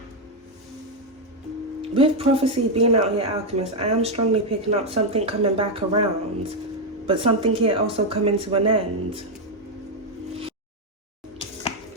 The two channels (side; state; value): both; normal; correlation 0.03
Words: With prophecy being out here, Alchemist, I am strongly picking up something coming back around, but something here also coming to an end.